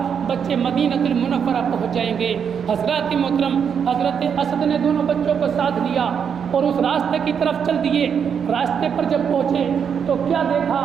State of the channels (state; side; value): quieter; left; 7.3 dB